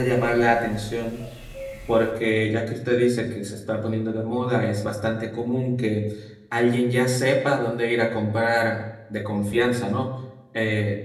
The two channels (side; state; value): both; identical; correlation 1.00